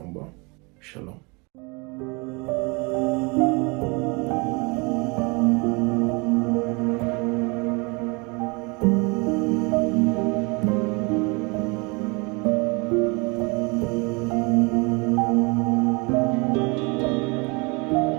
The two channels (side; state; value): left; quieter; 29.3 dB